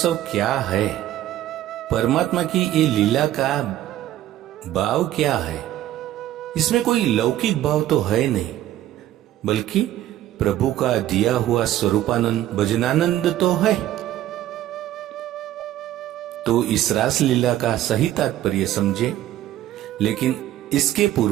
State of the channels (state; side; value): quieter; left; 13.2 dB